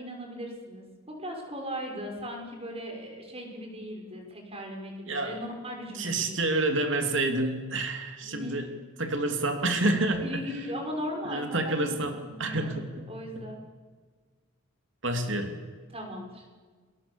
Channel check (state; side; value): normal; both; correlation 0.29